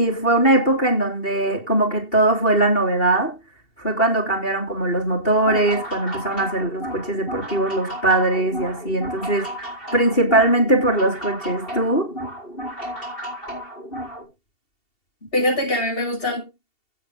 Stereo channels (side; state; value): right; late; 2.7 ms